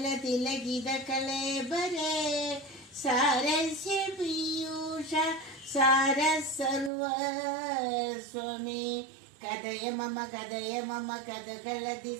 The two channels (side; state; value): left; drops out; at 6.9 s